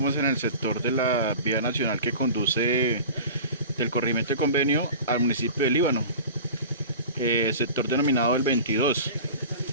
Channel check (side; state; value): both; inverted; correlation -0.37